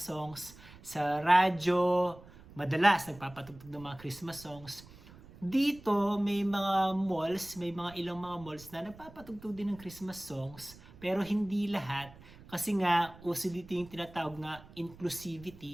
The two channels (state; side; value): noise; right; rumble, 20 dB below the sound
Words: Sa radyo, madalas nagpapatugtog ng mga Christmas songs. Dito may mga malls, may mga ilang mga malls na nagpapatugtog din ng Christmas songs, pero hindi lahat kasi nga uso dito yung tinatawag na